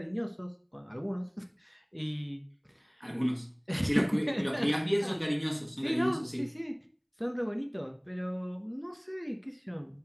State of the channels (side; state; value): both; identical; correlation 1.00